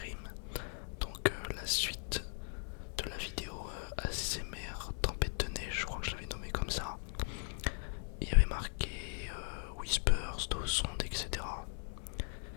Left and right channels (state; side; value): silent; right; 52 dB below the other